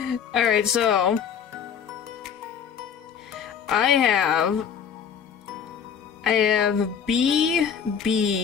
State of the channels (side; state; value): right; quieter; 7.6 dB